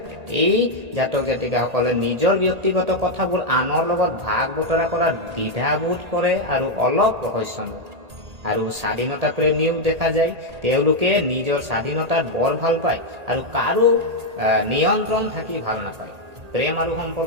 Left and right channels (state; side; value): late; left; 1.8 ms